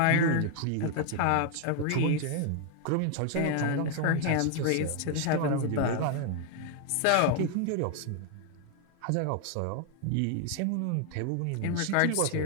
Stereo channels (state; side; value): different; both; correlation 0.00